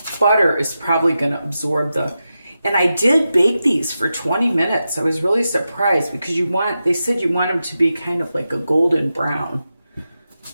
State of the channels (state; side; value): inverted; both; correlation -0.90